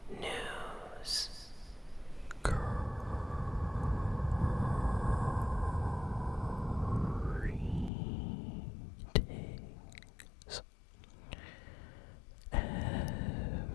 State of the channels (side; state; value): right; drops out; at 7.9 s